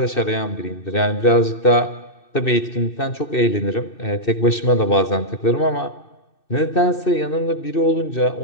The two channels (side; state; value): right; late; 2.6 ms